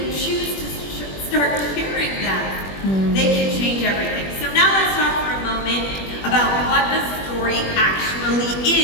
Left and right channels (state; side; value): late; right; 21 ms